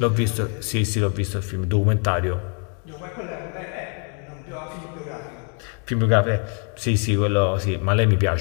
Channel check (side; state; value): right; quieter; 39.8 dB